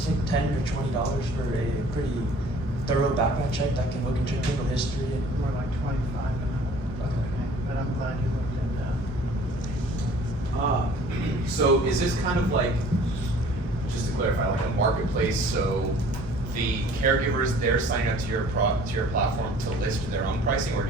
like $10 or $20 for a pretty thorough background check that can look into your criminal history. More like 25 an hour. Okay. But I'm glad you looked at that. So is this kind of like, just to clarify, like a marketplace? So the caregivers, they're signing up to your platform to list their own pricing, or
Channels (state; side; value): normal; both; correlation 0.51